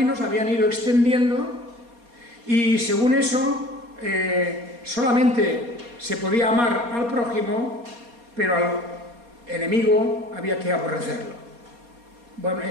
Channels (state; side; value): late; left; 4.2 ms